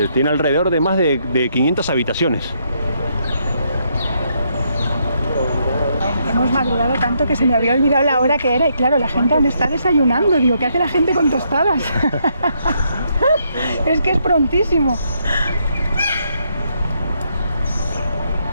Tiene alrededor de más de 500 habitaciones. Hemos madrugado tanto que se me había olvidado la hora que era. Y claro, la gente aún está desayunando. Digo, ¿qué hace la gente con tostadas? Es que es prontísimo.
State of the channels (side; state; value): both; inverted; correlation -0.75